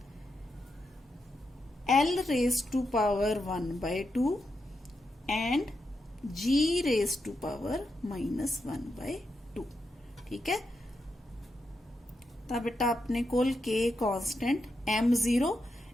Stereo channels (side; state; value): both; normal; correlation 0.85